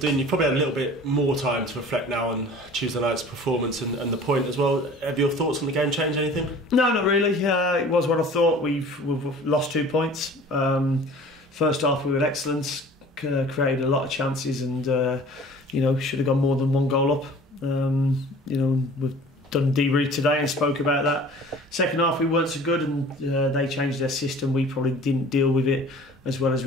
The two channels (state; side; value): normal; both; correlation 0.46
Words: you've probably had a little bit more time to reflect now on Tuesday night's performance and the point as well. Have your thoughts on the game changed anything? No, not really. It was what I thought. We've lost 2 points. First half we were excellent, created a lot of chances, and should have gone more than 1 goal up. We've done debrief today and spoke about that. Second half we weren't so good, and they changed their system. We probably didn't deal with it as well